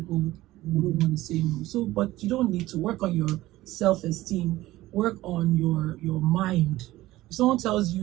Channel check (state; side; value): quieter; left; 16.8 dB